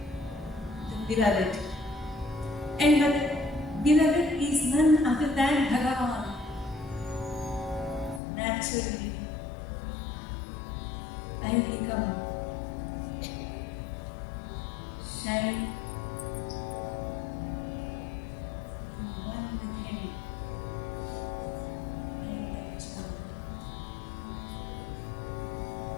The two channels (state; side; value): drops out; right; at 8.2 s